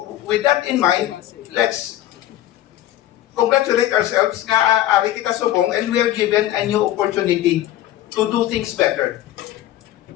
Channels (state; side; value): quieter; right; 13.6 dB